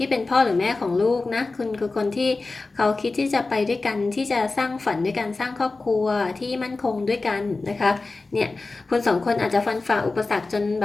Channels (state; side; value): quieter; right; 3.6 dB